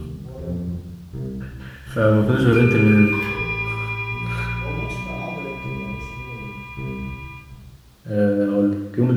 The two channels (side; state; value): both; identical; correlation 1.00